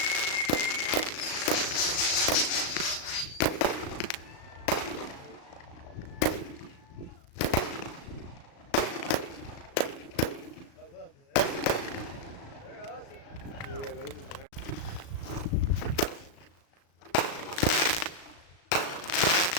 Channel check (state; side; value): late; right; 36 ms